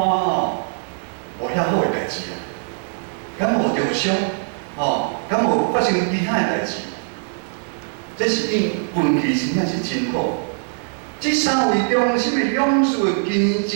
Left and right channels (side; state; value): left; silent; digital silence